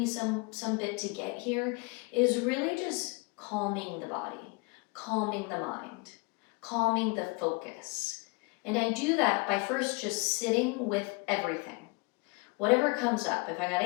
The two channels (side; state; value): right; quieter; 28.6 dB